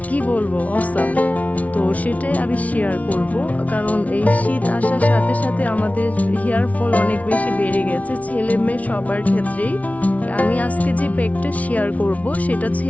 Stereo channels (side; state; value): right; late; 0.069 ms